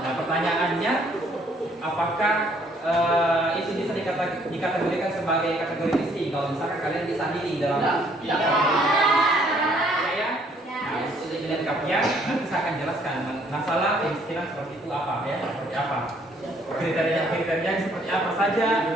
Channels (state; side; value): normal; both; correlation 0.64